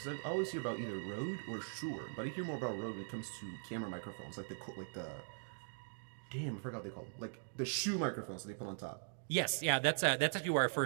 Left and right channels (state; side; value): silent; left; digital silence